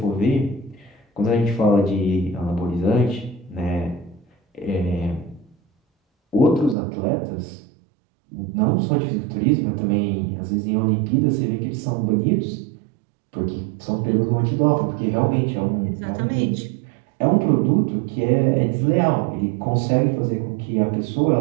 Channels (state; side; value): drops out; left; at 6.8 s